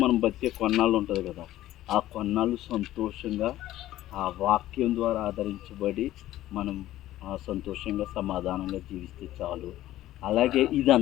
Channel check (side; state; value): right; quieter; 14.5 dB